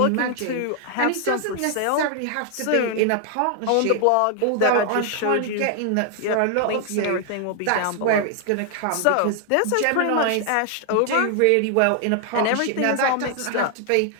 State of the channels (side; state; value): both; different; correlation 0.00